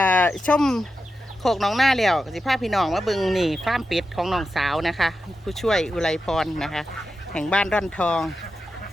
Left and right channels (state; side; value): normal; both; correlation 0.90